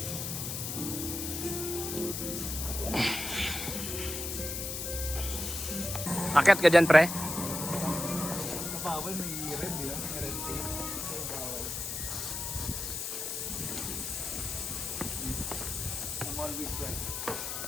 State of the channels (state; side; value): noise; left; hiss, 4 dB below the sound